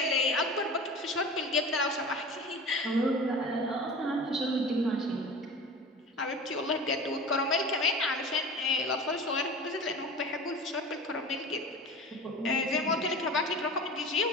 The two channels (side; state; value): both; normal; correlation 0.36